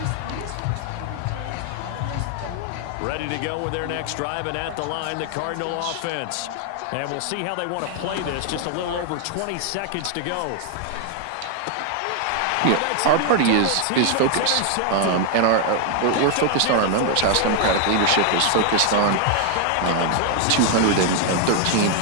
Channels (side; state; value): both; different; correlation 0.00